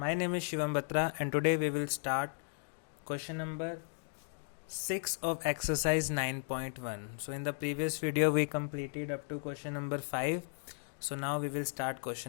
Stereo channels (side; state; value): right; silent; digital silence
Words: name is Shivam Batra and today we will start question number 6 of exercise 9.1. So in the previous video we completed up to question number 5. So now we will start